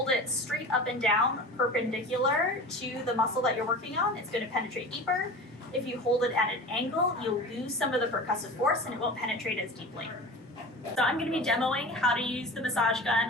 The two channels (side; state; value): both; normal; correlation 0.34